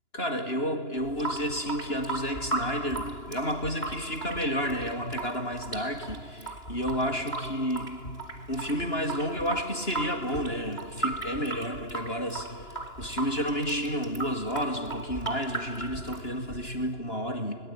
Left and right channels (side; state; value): right; late; 2.9 ms